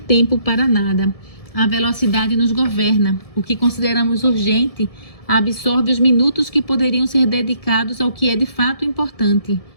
tempo para nada. A velocidade nos governa. O que consideramos urgente absorve os minutos que poderiam ser dedicados ao que é de fato importante.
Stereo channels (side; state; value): right; late; 1.7 ms